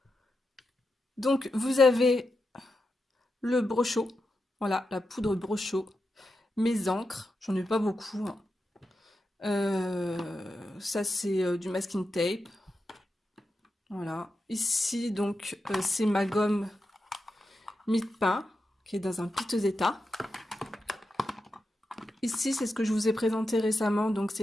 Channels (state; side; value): normal; both; correlation 0.88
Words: Donc, vous avez le brochot. Voilà, la poudre brochot. Mes encres, j'en ai pas beaucoup. Hein. Ça, c'est du masking tape. Voilà. Ici, donc, c'est ma gomme mie-de-pain qui est dans un piteux état. Ici, c'est ce que je vous ai présenté récemment. Donc,